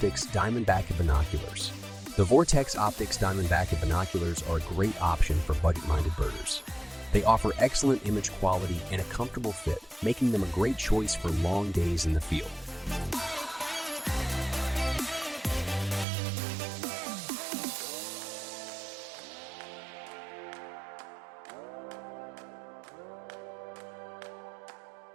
Diamondback Binoculars. The Vortex Optics Diamondback binoculars are a great option for budget-minded birders. They offer excellent image quality and a comfortable fit, making them a great choice for long days in the field.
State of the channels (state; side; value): drops out; left; at 16.1 s